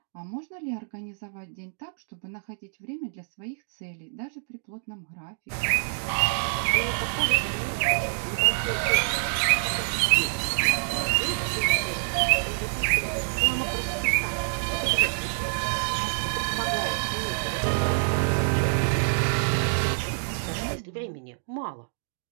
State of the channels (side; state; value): left; silent; digital silence